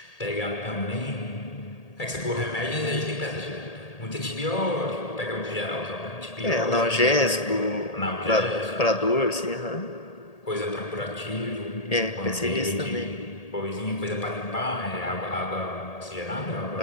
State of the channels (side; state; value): right; late; 1.8 ms